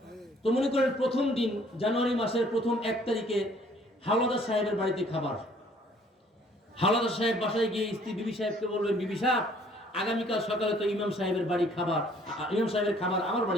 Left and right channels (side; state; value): both; normal; correlation 0.59